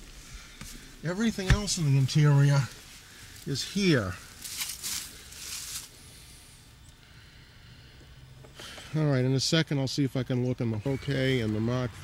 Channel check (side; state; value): both; identical; correlation 1.00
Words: Everything else in the interior is here. Alright, in a second I'll see if I can look in the okay, and the Mark